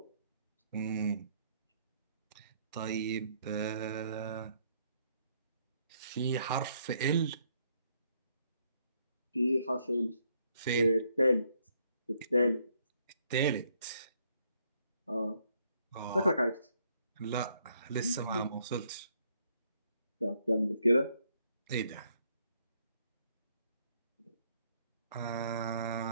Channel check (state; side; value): inverted; both; correlation -0.71